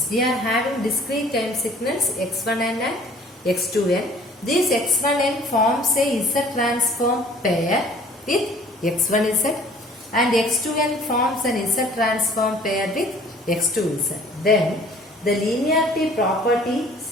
x1n and x2n. This x1n forms a Z transform pair with x1z, and x2n forms an Z transform pair with x2z. Then the linearity property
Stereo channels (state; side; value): normal; both; correlation 0.52